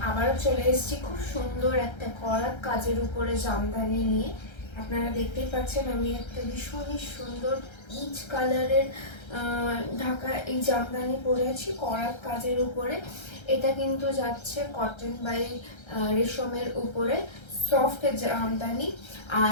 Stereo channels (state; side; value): late; right; 1.3 ms